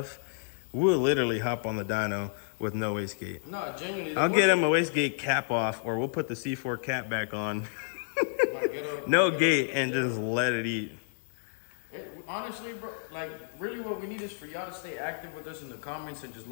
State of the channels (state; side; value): silent; right; digital silence